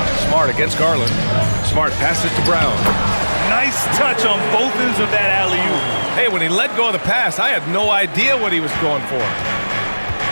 Smart against Garland. Smart passes to Brown. Nice touch on both ends of that alley-oop. Hey, when he let go of the pass, I had no idea what he was going for.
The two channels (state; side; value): inverted; both; correlation -1.00